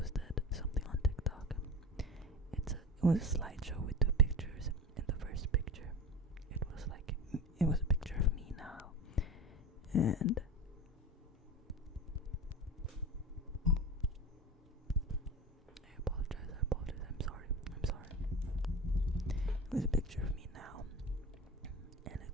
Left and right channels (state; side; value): normal; both; correlation 0.30